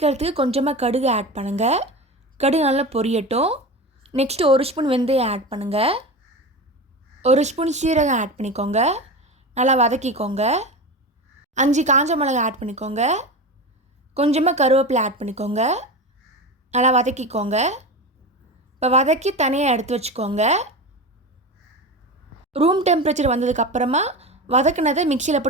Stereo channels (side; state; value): both; normal; correlation 0.25